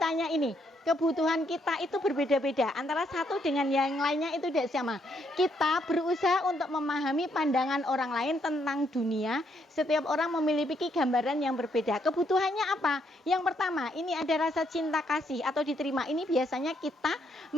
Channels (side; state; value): both; normal; correlation 0.73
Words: ini, kebutuhan kita itu berbeda-beda. Antara satu dengan yang lainnya itu tidak sama. Kita berusaha untuk memahami pandangan orang lain tentang dunia. Setiap orang memiliki gambaran yang berbeda. Kebutuhannya apa? Yang pertama, ini ada rasa cinta kasih atau diterima. Ini biasanya kita